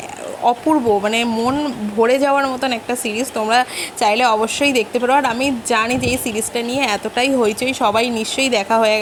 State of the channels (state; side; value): identical; both; correlation 1.00